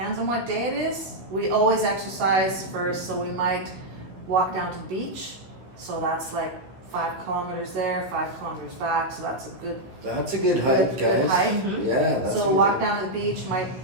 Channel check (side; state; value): left; late; 16 ms